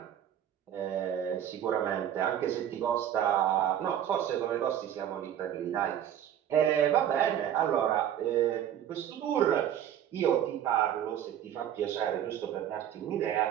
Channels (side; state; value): left; quieter; 10.4 dB